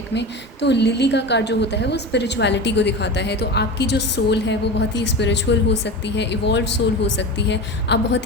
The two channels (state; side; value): normal; both; correlation 0.27